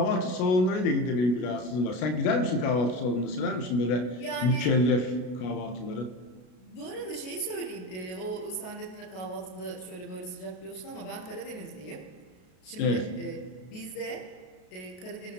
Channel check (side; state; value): right; late; 33 ms